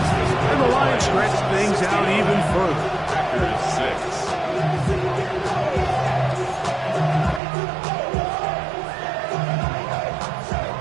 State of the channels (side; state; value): left; drops out; at 7.4 s